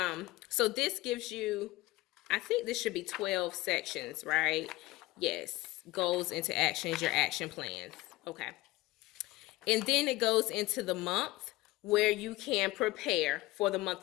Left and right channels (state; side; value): quieter; right; 19.2 dB